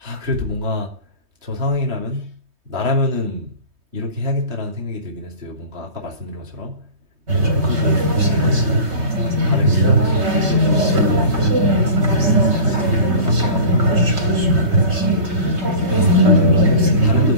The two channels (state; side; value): late; left; 3.2 ms